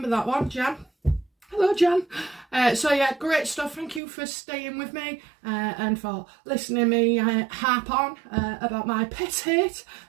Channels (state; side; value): drops out; left; at 4.0 s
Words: that one, Jan. Hello, Jan. So yeah, great stuff. Thank you for staying with me and for listening to me harp on about my pet hate,